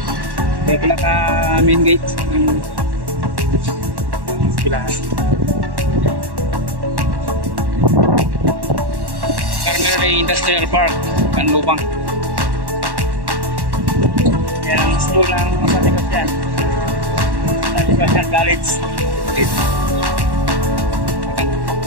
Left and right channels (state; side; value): late; left; 1.1 ms